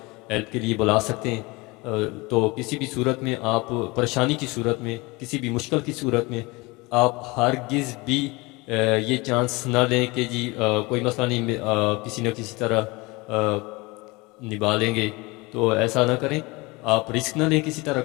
ہیلپ کے لیے بلا سکتے ہیں. تو کسی بھی صورت میں آپ پریشانی کی صورت میں, کسی بھی مشکل کی صورت میں آپ ہرگز بھی یہ چانس نہ لیں کہ جی کوئی مسئلہ نہیں, کسی نہ کسی طرح نبھا لیں گے. تو ایسا نہ کریں, آپ رسک نہ لیں کسی طرح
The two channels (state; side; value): quieter; right; 24.5 dB